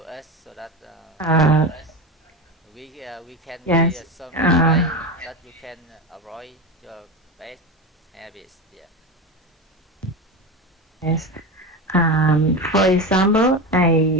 us so that we can yes. hear some way that you can avoid your bad habits. Yeah. Yes. For example,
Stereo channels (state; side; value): normal; both; correlation 0.21